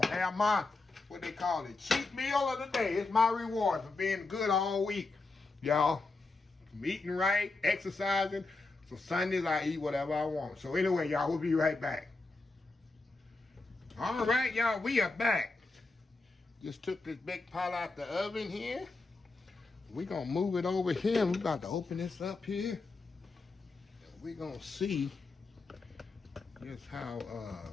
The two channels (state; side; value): quieter; right; 3.5 dB